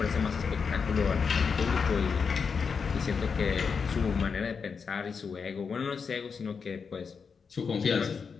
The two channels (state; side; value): quieter; right; 5.7 dB